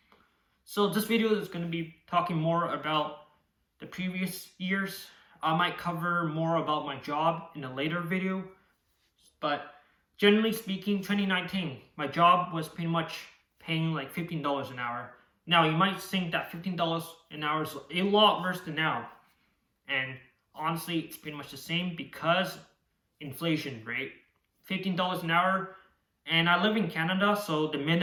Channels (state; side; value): identical; both; correlation 1.00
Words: So this video is going to be talking more about the previous years. I might cover more about my job in a later video, but generally speaking, 2019, my job was pretty much paying like $15 an hour. Now you might think that $15 an hour is a lot worse than now, and honestly, it's pretty much the same because inflation rate. $15 an hour, and I live in Canada, so the